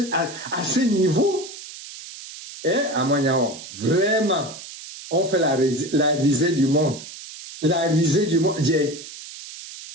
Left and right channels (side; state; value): right; noise; hiss, 14 dB below the sound